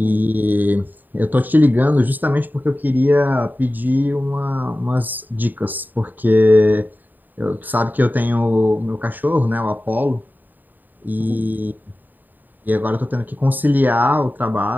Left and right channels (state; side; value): late; left; 0.088 ms